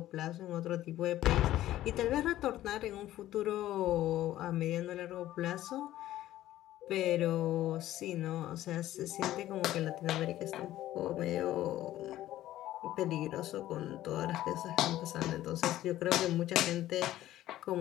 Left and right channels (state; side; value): quieter; right; 14.1 dB